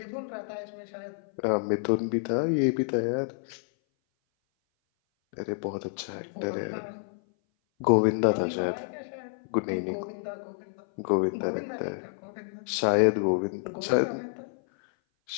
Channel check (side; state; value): right; silent; 57 dB below the other